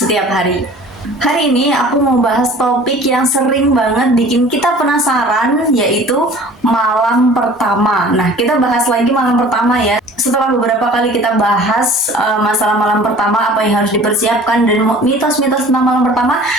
hari. Hari ini aku mau bahas topik yang sering banget bikin kita penasaran, yaitu malam pertama. Nah, kita bahas lagi malam pertama ya. Setelah beberapa kali kita bahas masalah malam pertama, apa yang harus dipersiapkan, dan mitos-mitos tentang malam pertama,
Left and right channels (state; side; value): normal; both; correlation 0.47